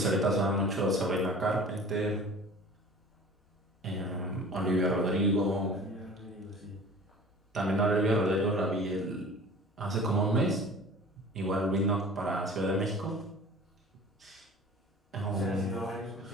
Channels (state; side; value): normal; both; correlation 0.43